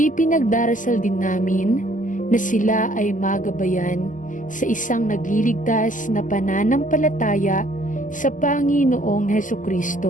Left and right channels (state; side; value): late; right; 0.38 ms